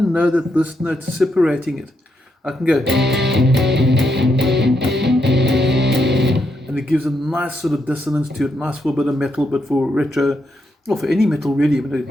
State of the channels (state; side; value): normal; both; correlation 0.80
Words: that this note's separating it, I can go, and it gives a nice sort of dissonance to it, nice for a bit of metal, but for retro, or for any metal really, but